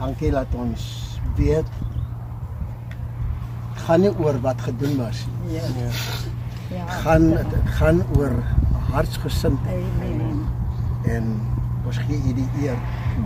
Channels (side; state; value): both; identical; correlation 1.00